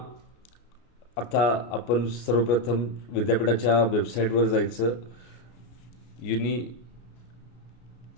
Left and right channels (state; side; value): late; right; 33 ms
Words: आता आपण सर्वप्रथम विद्यापीठाच्या वेबसाईटवर जायचं।